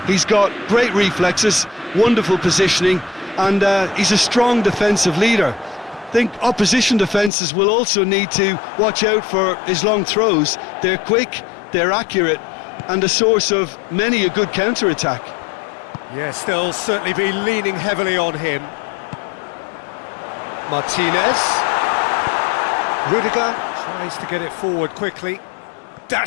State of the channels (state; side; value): drops out; right; at 7.3 s